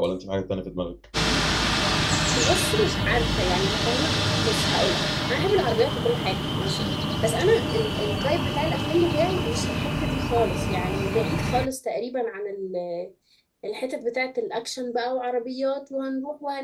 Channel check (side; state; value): both; identical; correlation 1.00